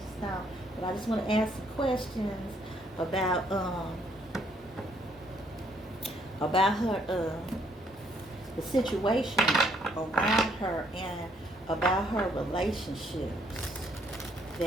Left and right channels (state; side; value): normal; both; correlation 0.68